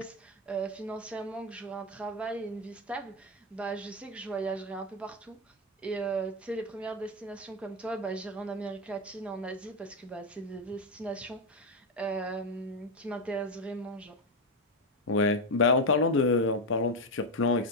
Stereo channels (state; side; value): normal; both; correlation 0.08